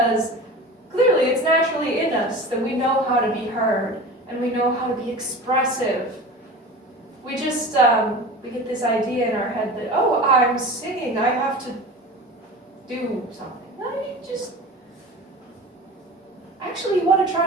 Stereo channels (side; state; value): both; normal; correlation 0.35